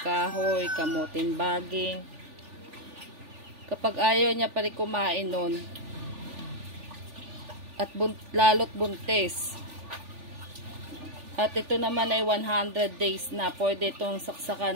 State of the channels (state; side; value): late; left; 3.4 ms